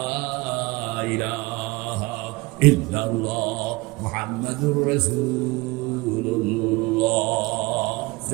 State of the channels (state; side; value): quieter; left; 23.1 dB